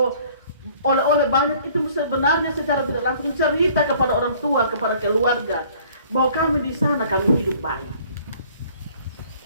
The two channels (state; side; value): inverted; both; correlation -0.55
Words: oleh-oleh banyak, itu sebenarnya secara tidak langsung cerita kepada orang tua, kepada keluarga, bahwa kami di sana, kami hidup baik.